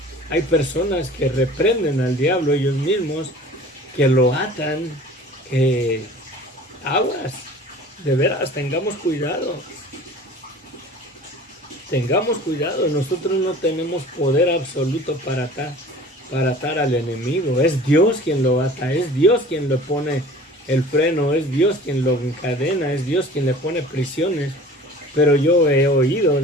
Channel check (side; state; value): both; normal; correlation 0.44